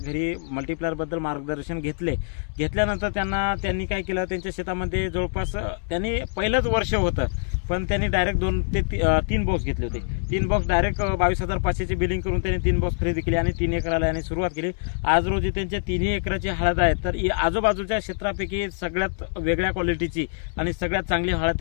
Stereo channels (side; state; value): right; silent; digital silence